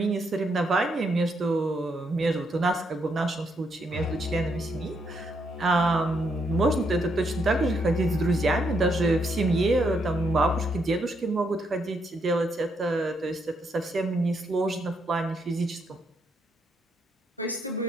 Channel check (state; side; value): normal; both; correlation 0.76